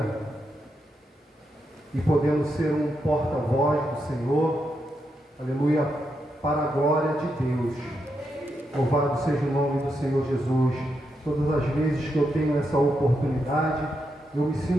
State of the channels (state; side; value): normal; both; correlation 0.83